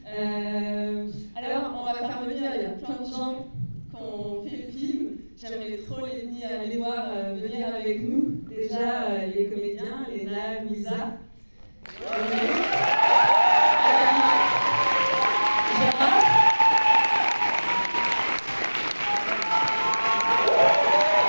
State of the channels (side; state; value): both; inverted; correlation -1.00